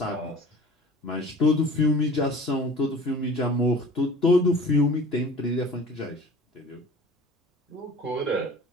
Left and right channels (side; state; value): both; normal; correlation 0.44